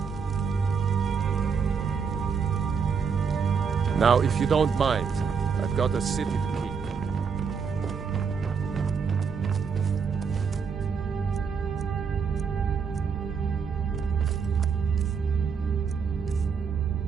Now, if you don't mind, I've got a city to keep.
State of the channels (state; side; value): quieter; left; 6.0 dB